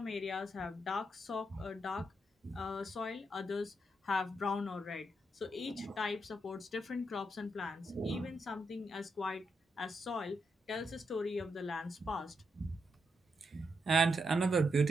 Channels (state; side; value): normal; both; correlation 0.82